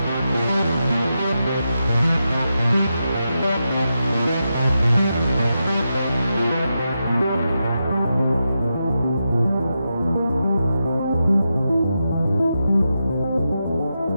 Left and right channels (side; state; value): both; inverted; correlation -0.88